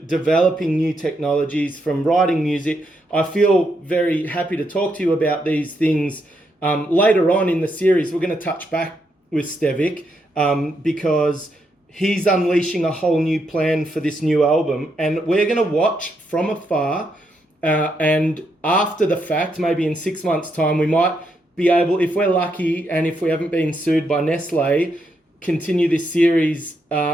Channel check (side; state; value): both; normal; correlation 0.79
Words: new technologies, from writing music. I feel very happy to talk to you about these things. Later on in the series, we're going to touch back with Stevic because he's unleashing a whole new plan for this new album, and we're going to watch from afar. And after the fact, maybe in 6 months' time, we might be able, if we're lucky and if we haven't been sued by Nestle, continue this series